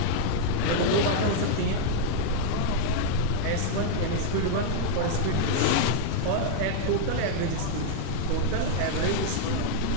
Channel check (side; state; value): both; different; correlation -0.01